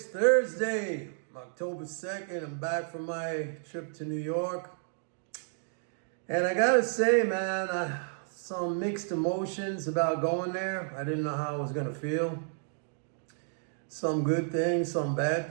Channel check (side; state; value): left; silent; digital silence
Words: Thursday, October 2nd. I'm back from my trip to New York. And I gotta say, man, some mixed emotions about going there. I didn't know how I was gonna feel. Some good things, some bad